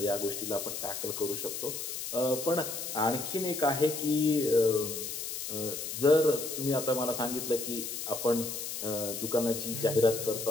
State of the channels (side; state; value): left; noise; hiss, 5 dB below the sound